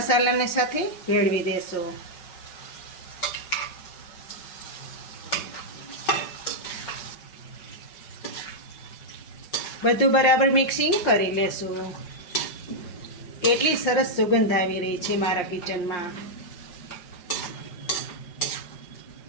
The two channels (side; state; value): right; late; 5.6 ms